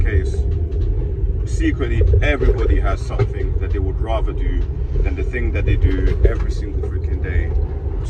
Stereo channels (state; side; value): identical; both; correlation 1.00